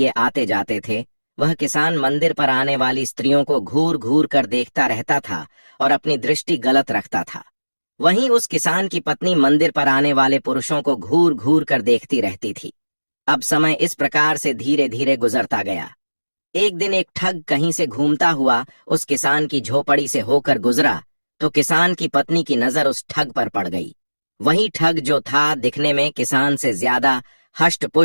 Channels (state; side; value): inverted; both; correlation -1.00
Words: आते जाते थे, वह किसान मंदिर पर आने वाली स्त्रियों को घूर घूर कर देखता रहता था और अपनी दृष्टि गलत रखता था। वहीं उस किसान की पत्नी मंदिर पर आने वाले पुरुषों को घूर घूर कर देखती रहती थी। अब समय इस प्रकार से धीरे धीरे गुजरता गया। एक दिन एक ठग कहीं से घूमता हुआ उस किसान की झोपड़ी से होकर गुजरा तो किसान की पत्नी की नजर उस ठग पर पड़ गई। वही ठग जो था दिखने में किसान से ज्यादा